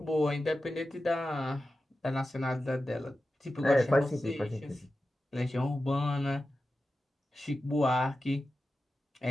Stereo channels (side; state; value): both; normal; correlation 0.93